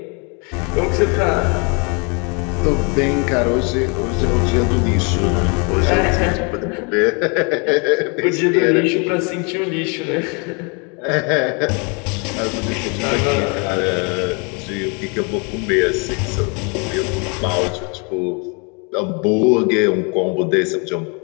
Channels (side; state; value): right; quieter; 33.9 dB